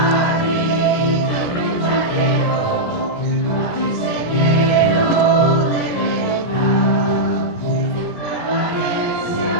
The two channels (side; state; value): right; late; 17 ms